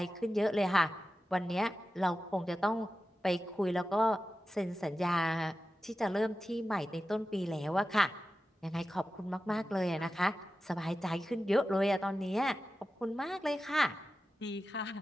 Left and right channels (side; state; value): both; normal; correlation 0.93